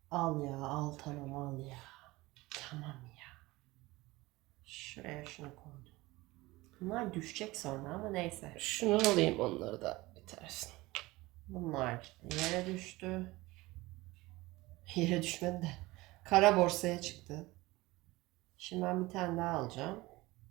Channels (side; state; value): left; quieter; 20.4 dB